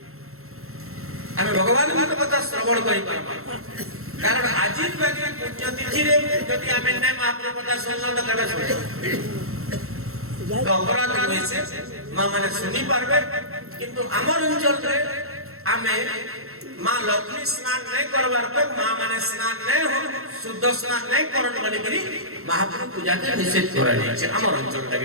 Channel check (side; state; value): left; late; 0.63 ms